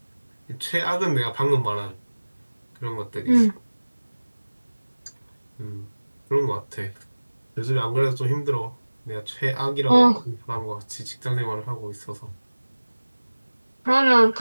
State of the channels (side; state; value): both; inverted; correlation -1.00